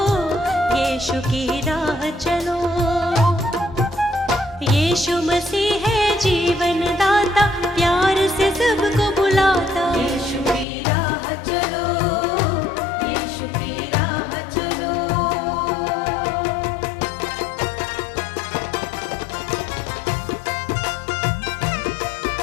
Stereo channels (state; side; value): drops out; right; at 10.7 s